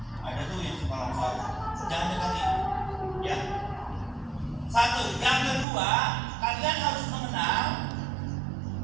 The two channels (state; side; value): drops out; left; at 5.7 s